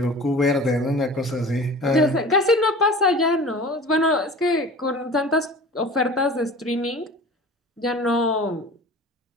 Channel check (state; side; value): normal; both; correlation 0.39